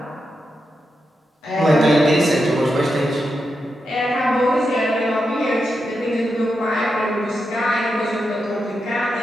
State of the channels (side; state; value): both; normal; correlation 0.87